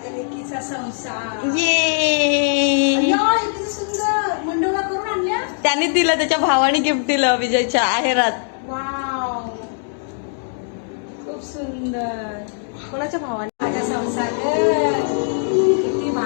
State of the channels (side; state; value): right; silent; 65 dB below the other